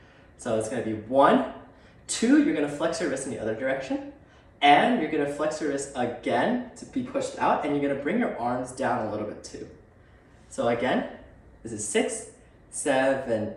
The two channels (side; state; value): both; identical; correlation 1.00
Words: So it's going to be 1, 2, you're going to flex your wrist in the other direction, and you're going to flex your wrist again to be pushed out, and you're going to bring your arms down a little bit too. So again, this is 6, 7,